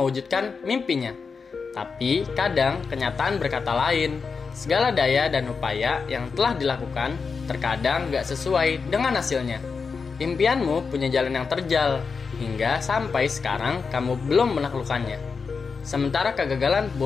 mimpinya. Tapi kadang kenyataan berkata lain. Segala daya dan upaya yang telah dilakukan terkadang gak sesuai dengan hasilnya. Impianmu punya jalan yang terjal, hingga sampai sekarang kamu belum menaklukkannya. Sementara kegagalan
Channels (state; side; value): quieter; right; 5.1 dB